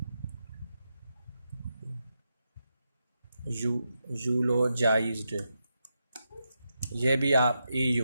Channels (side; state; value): both; inverted; correlation -0.86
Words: यूलोजाइज्ड, ये भी आप